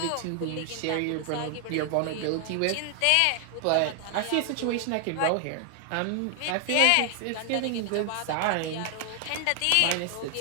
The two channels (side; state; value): both; different; correlation 0.00